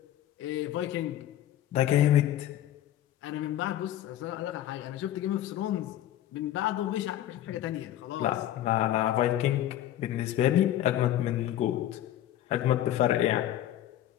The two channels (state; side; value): quieter; right; 12.5 dB